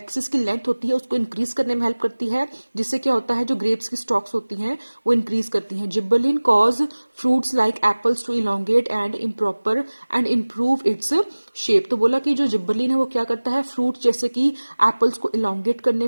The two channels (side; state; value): both; inverted; correlation -1.00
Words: की लेंथ होती है, उसको इंक्रीज करने में हेल्प करती है, जिससे क्या होता है जो ग्रेप्स की स्टॉक्स होती हैं वो इंक्रीज करती हैं। Gibberellin cause fruits like apples to elongate and improve its shape. तो बोला कि जो जिब्बरलिन है वो क्या करता है, फ्रूट जैसे कि एप्पल्स को इलोंगेट करने